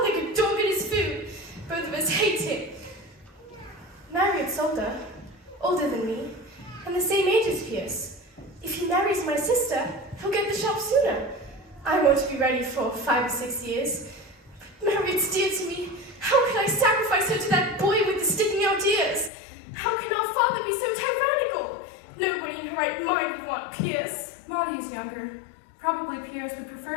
like a dog at his food. Both of us hate him. Marriott's older than me, and the same age as Pierce. If he marries my sister, he'll get the shop sooner. I won't be ready for 5 or 6 years. Marriott's dear to me. How can I sacrifice her to that boy with the sticking out ears? How can our father be so tyrannical? Nobody in her right mind would want Pierce. Maudie's younger. Probably Pierce would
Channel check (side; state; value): right; drops out; at 19.3 s